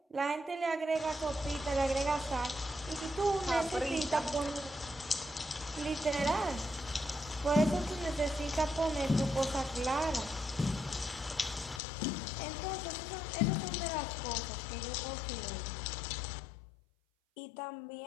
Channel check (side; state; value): right; drops out; at 11.8 s